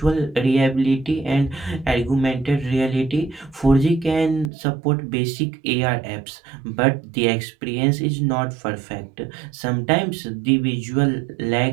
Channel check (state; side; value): drops out; left; at 4.5 s